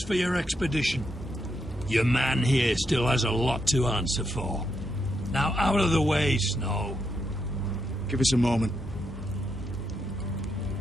for your expedition. Your man here still has a lot to answer for. Now out of the way, Snow. Give us a moment.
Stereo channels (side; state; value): both; normal; correlation 0.81